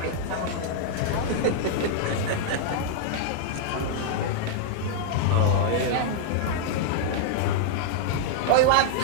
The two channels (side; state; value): both; different; correlation -0.01